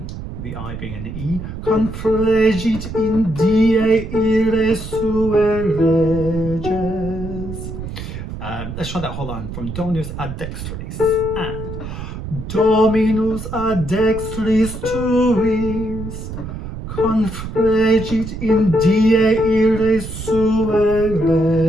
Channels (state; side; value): noise; right; rumble, 8 dB below the sound